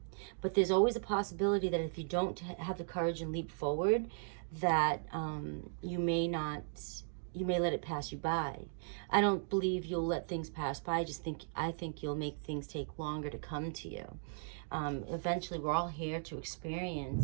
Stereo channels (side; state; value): left; silent; digital silence